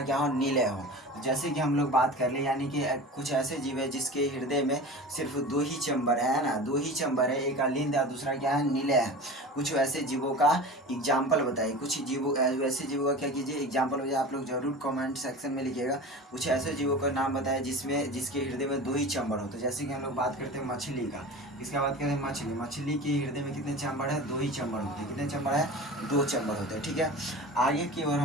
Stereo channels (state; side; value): normal; both; correlation 0.34